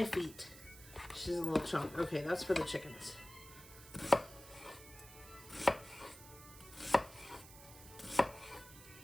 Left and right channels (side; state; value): right; noise; hiss, 17 dB below the sound